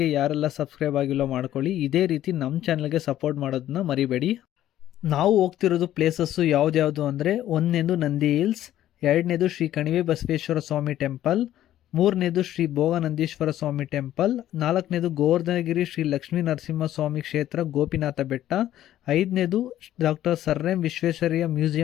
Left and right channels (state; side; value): quieter; right; 12.7 dB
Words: ಯಾರೆಲ್ಲ ಸಬ್ಸ್ಕ್ರೈಬ್ ಆಗಿಲ್ಲ ಮಾಡ್ಕೊಳ್ಳಿ. ಇದೇ ರೀತಿ ನಮ್ಮ ಚಾನೆಲ್ಗೆ ಸಪೋರ್ಟ್ ಮಾಡೋದನ್ನ ಮರಿಬೇಡಿ. ನಾವು ಹೋಗ್ತಿರೋದು ಪ್ಲೇಸಸ್ಸು ಯಾವ್ದ್ಯಾವುದು ಅಂದರೆ, ಒಂದನೇದು ನಂದಿ ಹಿಲ್ಸ್, ಎರಡನೇದು ಶ್ರೀ ಕಣಿವೆ ಬಸವೇಶ್ವರ ಸ್ವಾಮಿ ಟೆಂಪಲ್, ಮೂರನೇದು ಶ್ರೀ ಭೋಗನಂದೀಶ್ವರ ಸ್ವಾಮಿ ಟೆಂಪಲ್, ನಾಲ್ಕನೇದು ಗೋವರ್ಧನಗಿರಿ ಶ್ರೀ ಲಕ್ಷ್ಮೀ ನರಸಿಂಹ ಸ್ವಾಮಿ ಕ್ಷೇತ್ರ ಗೋಪಿನಾಥ ಬೆಟ್ಟ, ಐದನೇದು doctor sir M Visvesvaraya